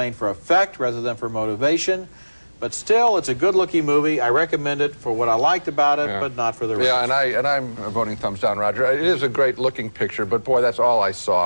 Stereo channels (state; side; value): inverted; both; correlation -1.00